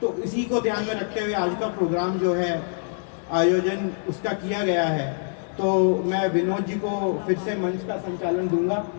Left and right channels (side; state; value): right; silent; 62 dB below the other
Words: तो इसी को ध्यान में रखते हुए आज का प्रोग्राम जो है आयोजन उसका किया गया है। तो मैं विनोद जी को फिर से मंच का संचालन दूंगा